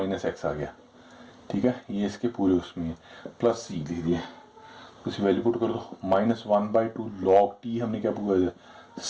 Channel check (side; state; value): both; identical; correlation 1.00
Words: एक्स आ गया, ठीक है, ये इसके पूरे उसमें है, प्लस सी लिख दिया, उसी वैल्यू पुट कर दो, -1/2 लॉग टी हमने क्या पूरा दिया,